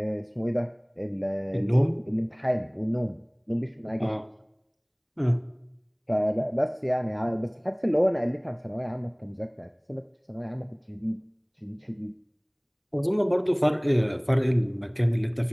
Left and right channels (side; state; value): both; identical; correlation 1.00